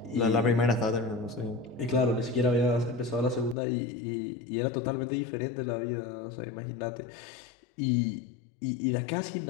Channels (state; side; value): drops out; right; at 3.6 s